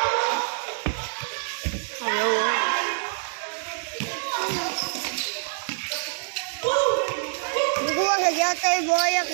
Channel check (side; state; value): left; silent; digital silence